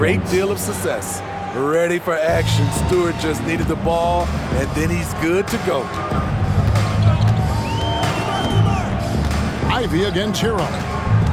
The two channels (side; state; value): both; identical; correlation 1.00